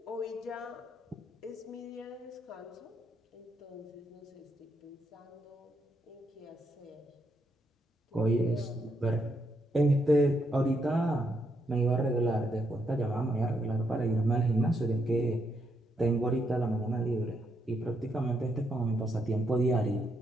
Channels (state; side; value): normal; both; correlation 0.78